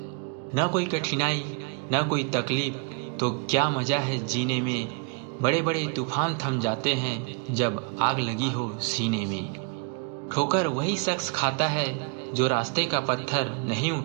न कोई कठिनाई न कोई तकलीफ तो क्या मज़ा है जीने में। बड़े बड़े तूफान थम जाते हैं जब आग लगी हो सीने में। ठोकर वही शख्स खाता है जो रास्ते का पत्थर नहीं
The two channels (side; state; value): left; quieter; 33.9 dB